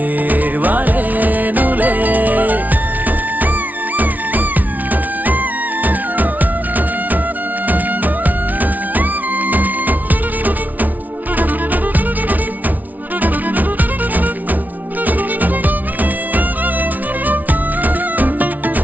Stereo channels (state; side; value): late; left; 0.077 ms